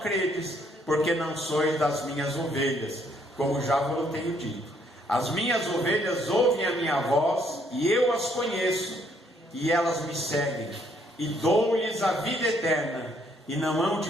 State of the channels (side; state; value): both; normal; correlation 0.68